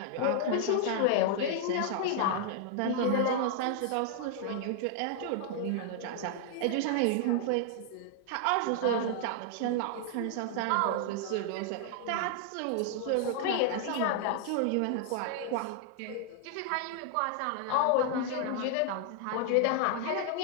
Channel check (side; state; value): both; different; correlation 0.00